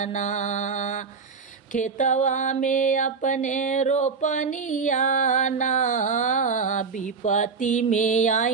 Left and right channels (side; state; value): left; quieter; 5.2 dB